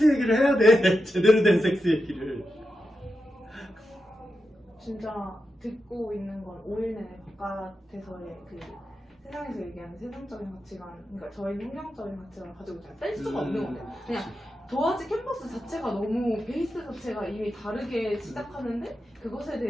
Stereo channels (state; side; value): normal; both; correlation 0.89